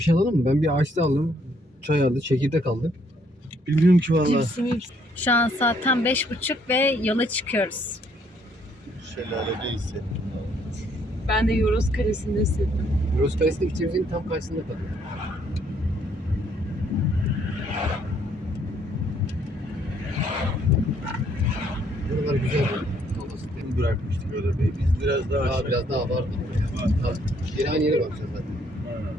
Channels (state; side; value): normal; both; correlation 0.67